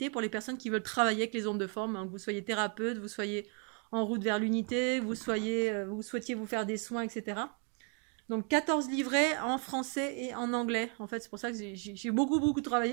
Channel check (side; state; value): left; quieter; 39.0 dB